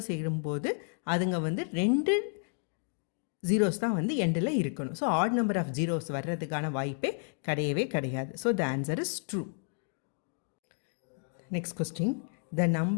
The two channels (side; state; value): right; silent; 57 dB below the other